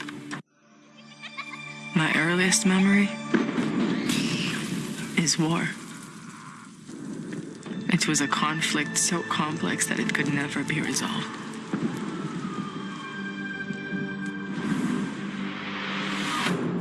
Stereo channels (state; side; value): identical; both; correlation 1.00